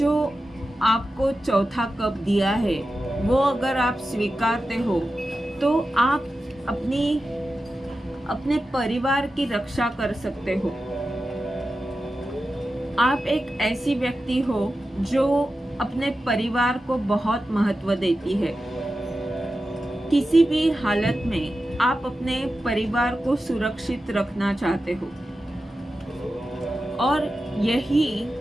आपको चौथा कप दिया है वो अगर आप स्वीकारते हो तो आप अपने परिवार की रक्षा कर सकते हो। आप एक ऐसी व्यक्ति हो जो अपने परिवार को बहुत महत्व देती है। किसी भी हालत में आप अपने परिवार को सुरक्षित रखना चाहते हो, और यही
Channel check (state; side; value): normal; both; correlation 0.92